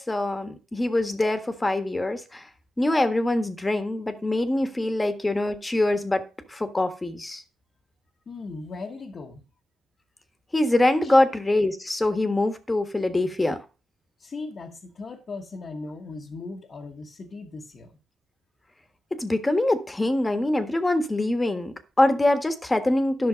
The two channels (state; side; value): normal; both; correlation 0.96